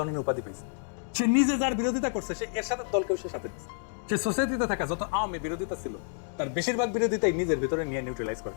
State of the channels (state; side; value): silent; right; 58 dB below the other